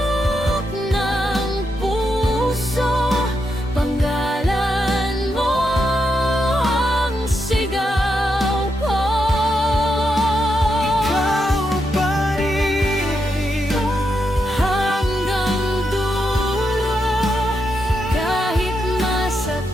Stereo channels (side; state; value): both; normal; correlation 0.83